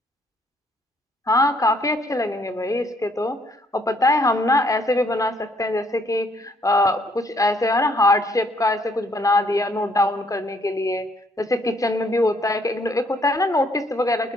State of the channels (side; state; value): both; normal; correlation 0.67